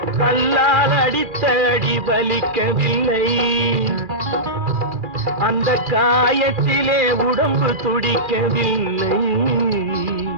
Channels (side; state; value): left; late; 2.4 ms